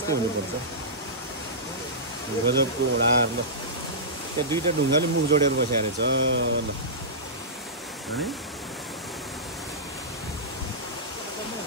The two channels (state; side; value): normal; both; correlation -0.16